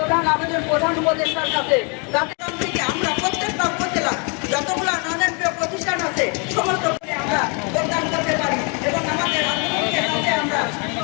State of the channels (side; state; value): right; quieter; 34.7 dB